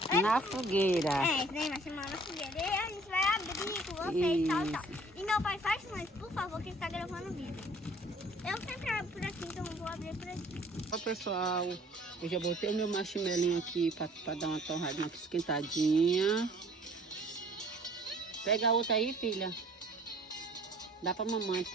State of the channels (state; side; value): normal; both; correlation 0.54